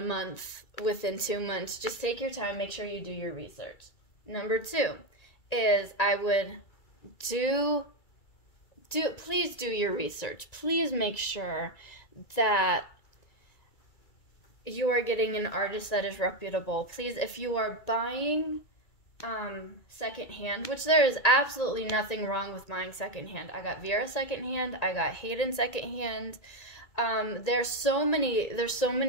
month, within 2 months. Just take your time, make sure you do your research. Number 2 is I would please do your research. Please make sure that you are getting an artist that is reputable. Please, if you are buying secondhand, which there is absolutely nothing wrong with buying secondhand. I got Vera secondhand. I got Hayden secondhand. There's so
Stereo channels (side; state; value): right; late; 1.9 ms